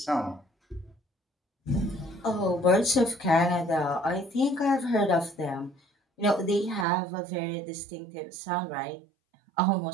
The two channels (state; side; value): drops out; left; at 6.9 s